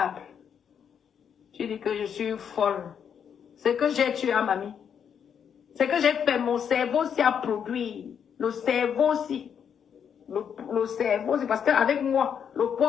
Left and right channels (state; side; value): quieter; right; 7.8 dB